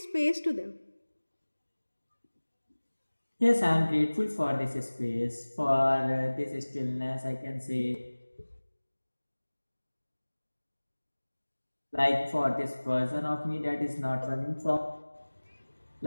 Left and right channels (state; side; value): inverted; both; correlation -1.00